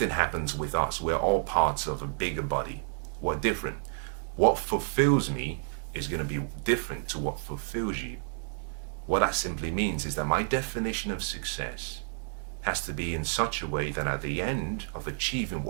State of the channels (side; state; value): left; silent; 58 dB below the other